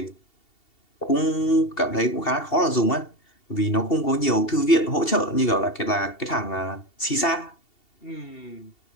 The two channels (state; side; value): late; right; 2.7 ms